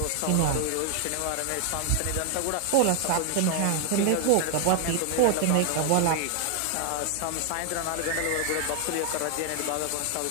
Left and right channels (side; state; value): both; different; correlation 0.00